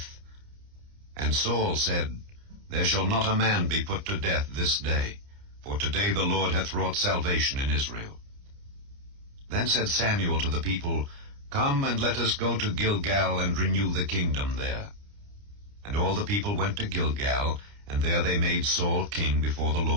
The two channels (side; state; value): left; late; 29 ms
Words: And Saul said, There shall not a man be put to death this day, for today the Lord hath wrought salvation in Israel. Then said Samuel to the people, Come, and let us go to Gilgal, and renew the kingdom there. And all the people went to Gilgal, and there they made Saul king before the